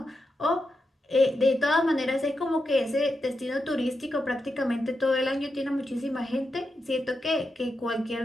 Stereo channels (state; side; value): normal; both; correlation 0.87